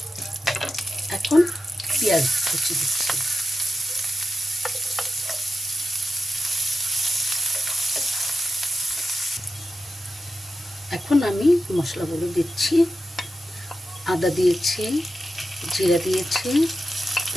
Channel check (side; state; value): both; normal; correlation 0.89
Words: এখন পেঁয়াজ কুচি দিচ্ছি। এখন আমি মশলাগুলো দিচ্ছি। আদা দিয়েছি, জিরা দিয়েছি,